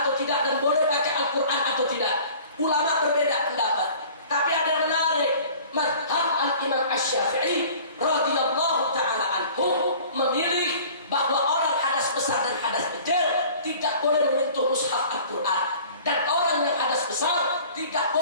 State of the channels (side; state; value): both; inverted; correlation -0.46